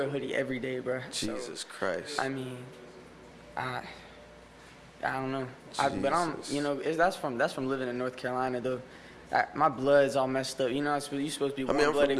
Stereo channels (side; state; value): both; identical; correlation 1.00